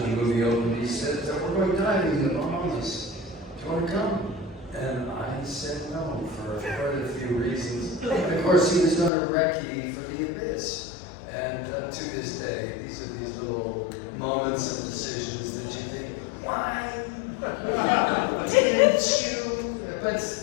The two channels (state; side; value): drops out; right; at 9.1 s